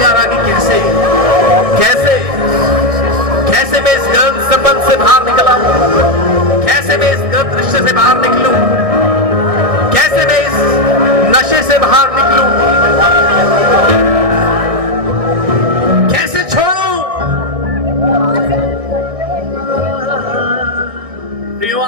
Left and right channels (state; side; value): late; left; 1.6 ms